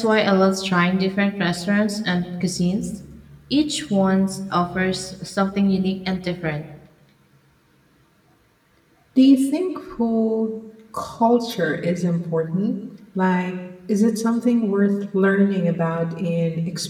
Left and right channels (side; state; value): both; identical; correlation 1.00